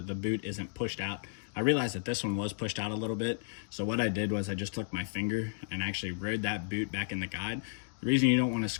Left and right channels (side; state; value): right; silent; digital silence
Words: boot isn't pushed out. I realized that this one was pushed out a little bit. So what I did was I just took my finger and actually rode that boot back in the guide. The reason you don't wanna